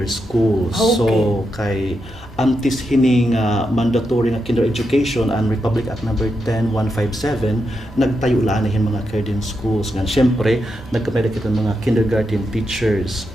schools. Okay. So kay antes hini nga mandatory nga kinder education and Republic Act number 10157 nagtayo la na mga kinder schools nga syempre nagkapay kita mga kindergarten teachers.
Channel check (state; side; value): normal; both; correlation 0.85